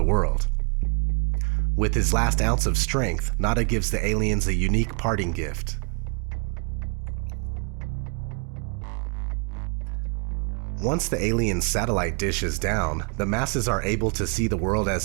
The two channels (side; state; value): left; quieter; 36.1 dB